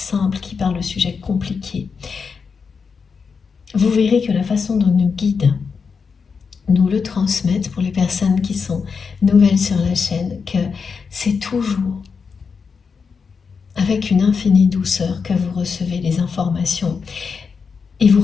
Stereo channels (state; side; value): quieter; right; 5.5 dB